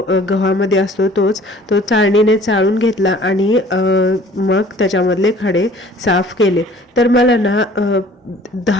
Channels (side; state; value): both; normal; correlation 0.51